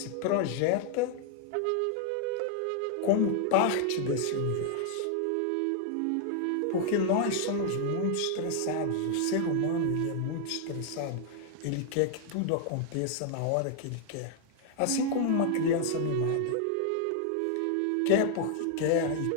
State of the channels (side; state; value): both; different; correlation 0.00